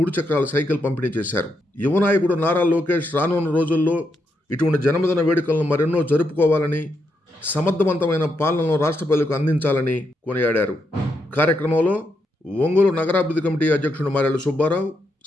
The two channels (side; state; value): both; normal; correlation 0.81